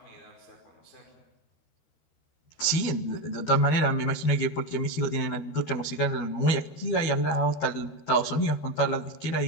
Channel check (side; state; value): right; late; 12 ms